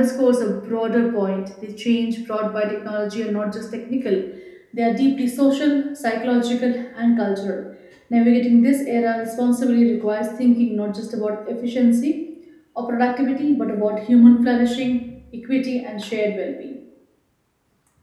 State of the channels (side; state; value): both; identical; correlation 1.00